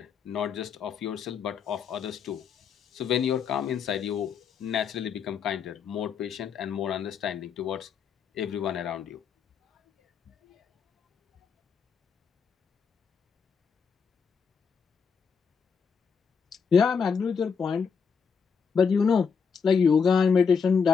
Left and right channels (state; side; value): quieter; right; 6.2 dB